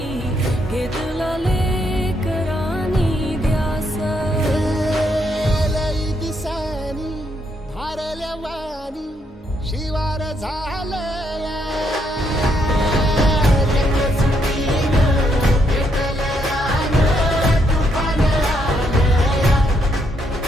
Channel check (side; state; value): both; normal; correlation 0.75